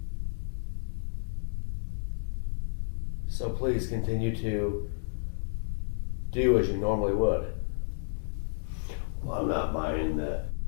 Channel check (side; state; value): right; silent; digital silence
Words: So please continue to do as you normally would. Well, I'm not buying the